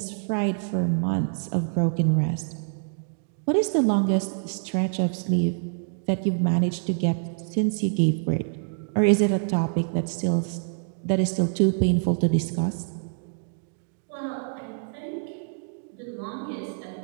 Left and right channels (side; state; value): left; silent; digital silence